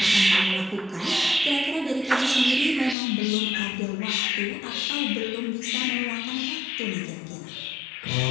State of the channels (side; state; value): right; drops out; at 3.0 s